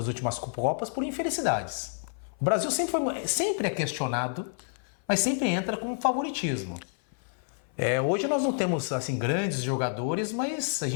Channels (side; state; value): right; silent; 56 dB below the other